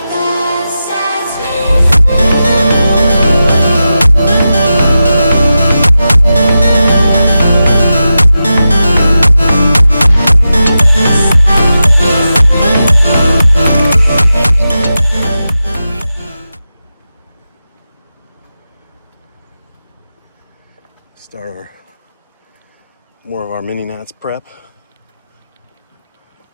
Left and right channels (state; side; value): inverted; both; correlation -0.91